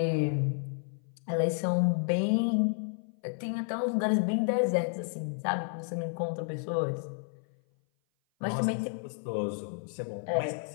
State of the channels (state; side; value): silent; right; 56 dB below the other